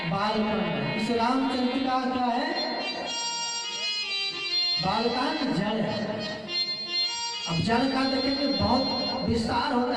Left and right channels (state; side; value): identical; both; correlation 1.00